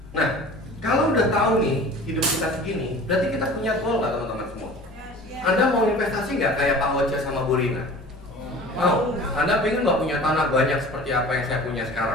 Nah, kalau udah tahu nih hidup kita segini, berarti kita punya goal nggak teman-teman semua? Anda mau investasi nggak kayak Pak Oce sama Bu Rina? Mau? Anda pengen nggak punya tanah banyak seperti apa yang saya punya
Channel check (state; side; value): normal; both; correlation 0.42